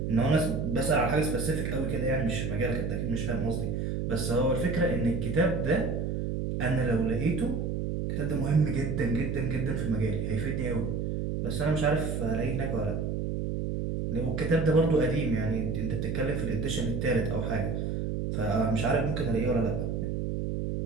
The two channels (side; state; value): right; noise; hum, 1 dB below the sound